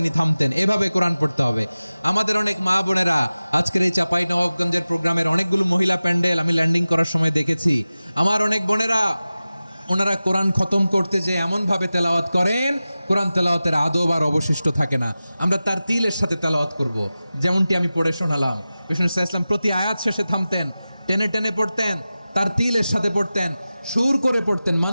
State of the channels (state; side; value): inverted; both; correlation -0.96